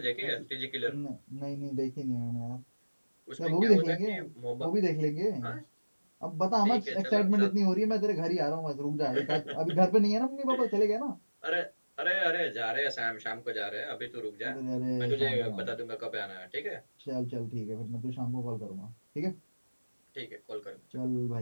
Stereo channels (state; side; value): inverted; both; correlation -1.00